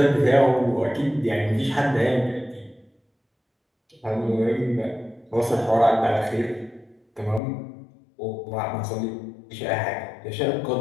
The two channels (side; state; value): right; drops out; at 7.4 s